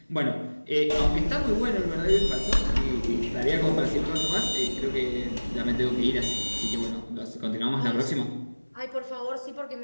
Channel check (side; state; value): both; inverted; correlation -1.00